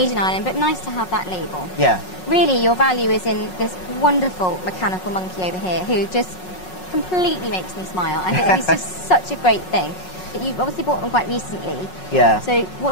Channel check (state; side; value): late; right; 5.5 ms